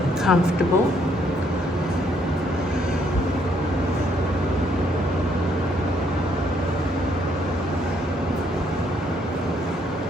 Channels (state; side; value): normal; both; correlation 0.70